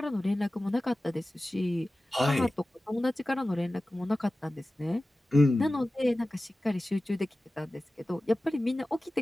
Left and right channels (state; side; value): normal; both; correlation 0.96